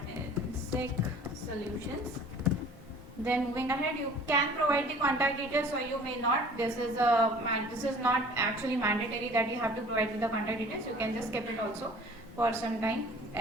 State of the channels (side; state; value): both; normal; correlation 0.48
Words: Solutions. Then moving ahead, you can provide the contact details or you may not. This is not actually mandatory that you have to provide the contact details. You can just keep it also for some time.